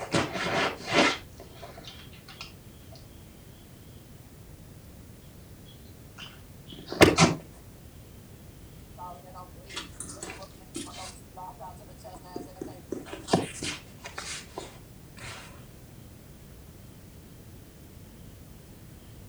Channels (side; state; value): both; identical; correlation 1.00